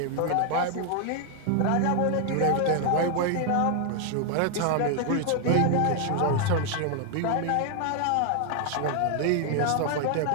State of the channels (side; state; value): both; different; correlation 0.00